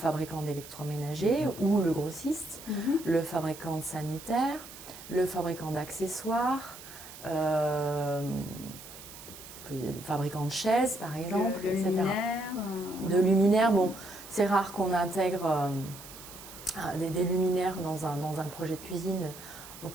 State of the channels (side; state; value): right; noise; hiss, 15 dB below the sound